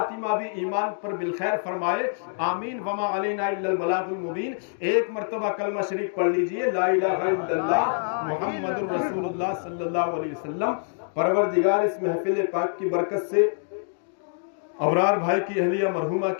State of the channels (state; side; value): silent; right; digital silence